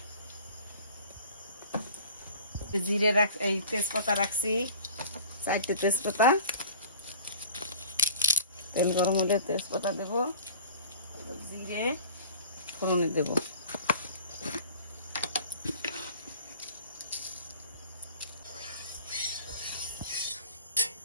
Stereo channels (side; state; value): both; inverted; correlation -0.42